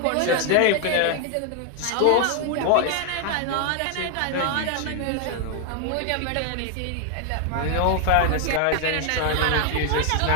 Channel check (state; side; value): different; both; correlation 0.00